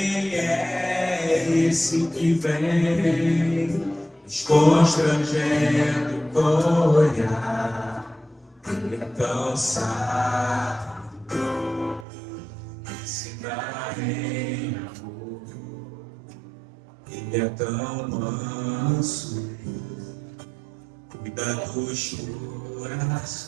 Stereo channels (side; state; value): left; drops out; at 12.1 s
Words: é esse que vem nos constrangendo com o olhar? Ele é tão sábio, ensina em amor. Ele é tão manso, cuida dos